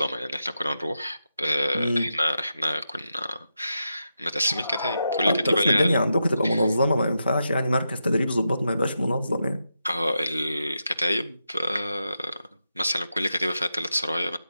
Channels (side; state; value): both; inverted; correlation -0.87